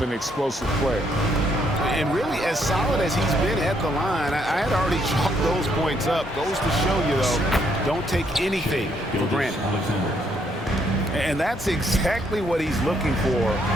and explosive player. And really, as solid as he's been at the line, I had already chalked those points up. Goes to show you, though, don't take anything for granted. And that's exactly what he's looking for,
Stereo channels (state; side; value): normal; both; correlation 0.72